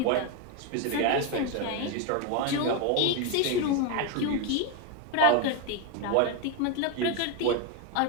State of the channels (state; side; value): different; both; correlation 0.02